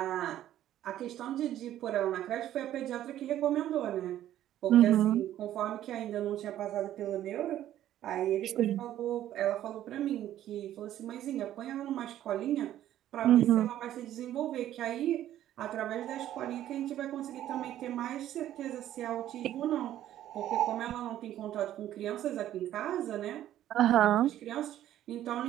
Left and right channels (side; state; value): left; quieter; 12.4 dB